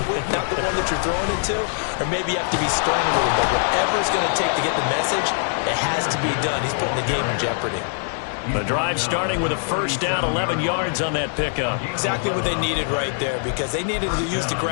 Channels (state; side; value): silent; right; 64 dB below the other